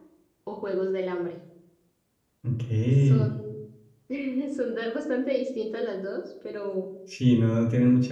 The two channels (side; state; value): both; identical; correlation 1.00